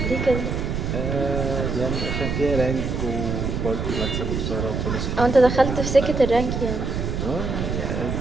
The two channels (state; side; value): noise; right; rumble, 2 dB below the sound